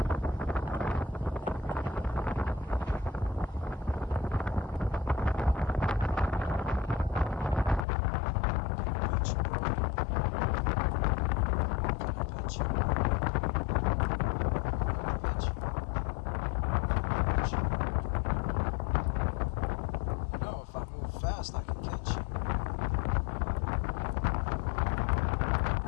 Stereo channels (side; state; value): right; drops out; at 7.9 s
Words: fast I can catch you.